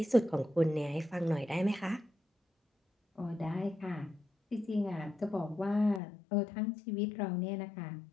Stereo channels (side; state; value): right; drops out; at 6.0 s